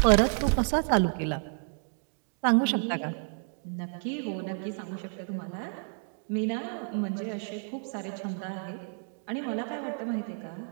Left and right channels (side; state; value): left; silent; 57 dB below the other